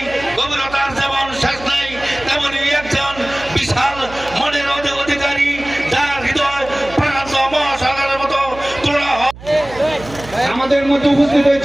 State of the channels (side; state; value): right; noise; hum, 16 dB below the sound